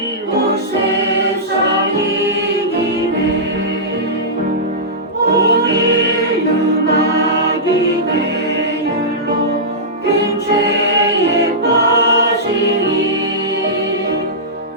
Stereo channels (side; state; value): both; normal; correlation -0.15